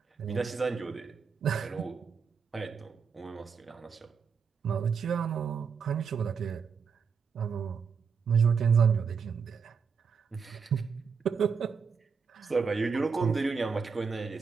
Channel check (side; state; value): left; quieter; 5.8 dB